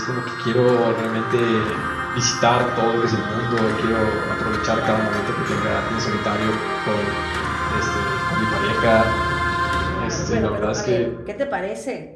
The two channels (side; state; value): both; identical; correlation 1.00